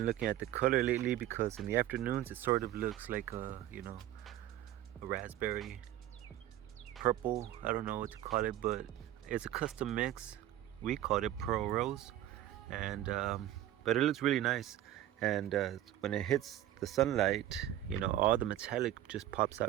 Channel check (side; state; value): left; quieter; 13.2 dB